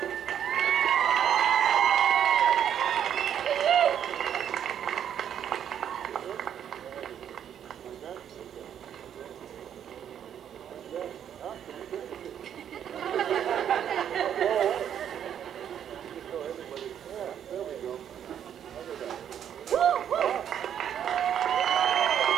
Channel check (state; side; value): quieter; left; 9.3 dB